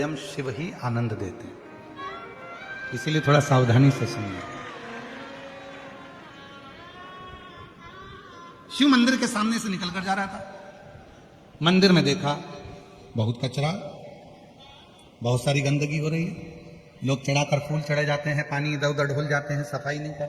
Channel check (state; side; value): identical; both; correlation 1.00